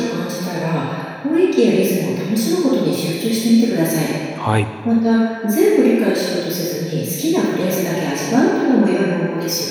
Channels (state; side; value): identical; both; correlation 1.00